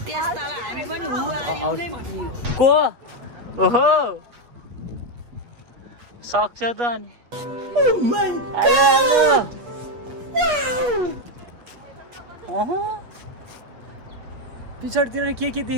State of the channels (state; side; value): late; left; 8.3 ms